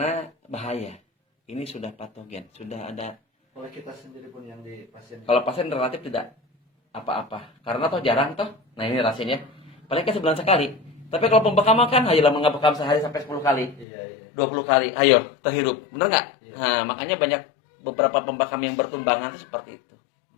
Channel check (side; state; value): right; drops out; at 13.9 s